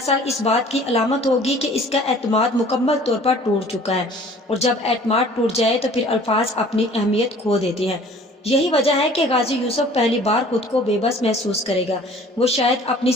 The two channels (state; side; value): normal; both; correlation 0.50